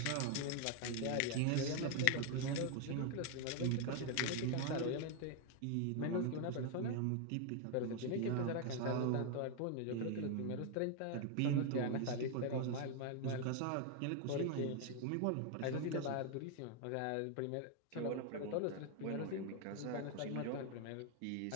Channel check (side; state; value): both; different; correlation 0.01